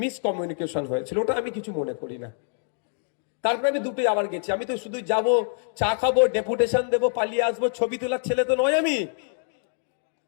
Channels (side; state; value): right; silent; digital silence